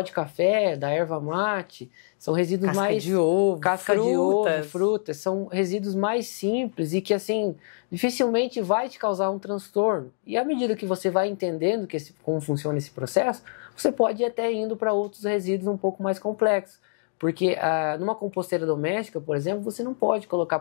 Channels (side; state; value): right; silent; digital silence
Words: de café, da erva mate, são resíduos casca mais... de ovo, casca de ovo, frutas, são resíduos mais simples e que, assim, dificilmente vai te causar um transtorno. E à medida que você vai entendendo como funciona esse processo, você pode ir até indo para outros resíduos um pouco mais complexos. Porque numa composteira doméstica, por exemplo, você não pode colocar